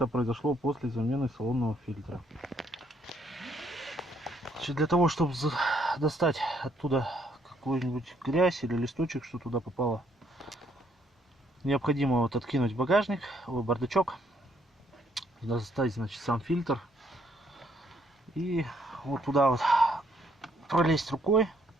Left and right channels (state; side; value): normal; both; correlation 0.69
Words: произошло после замены салонного фильтра. Значит, для того, чтобы достать оттуда какую-нибудь грязь или листочек, что туда попало, необходимо вот откинуть багажник, бардачок, достать, значит, сам фильтр и вот туда вот пролезть рукой